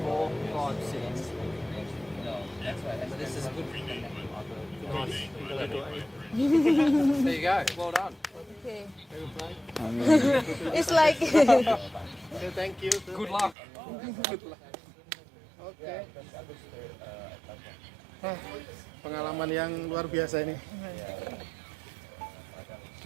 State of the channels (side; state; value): left; drops out; at 13.6 s